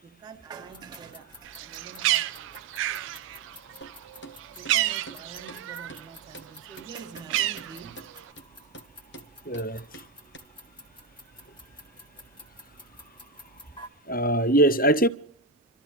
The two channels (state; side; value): quieter; left; 3.7 dB